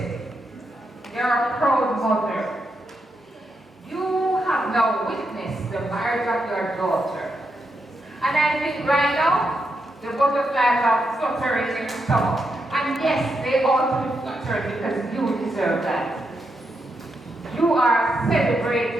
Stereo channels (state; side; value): normal; both; correlation 0.83